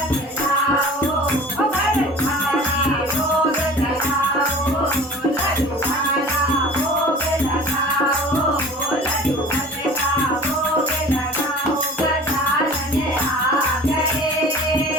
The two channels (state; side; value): normal; both; correlation 0.42